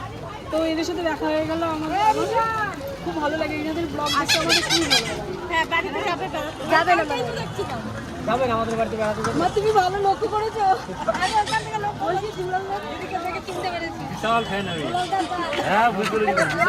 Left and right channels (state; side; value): identical; both; correlation 1.00